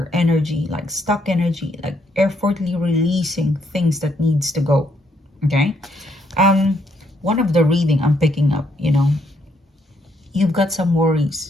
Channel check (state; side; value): normal; both; correlation 0.73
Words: energy, like stuck energy, like effortlessly releasing things that needs to go. Okay. One of the reading I'm picking up, you know, you've got some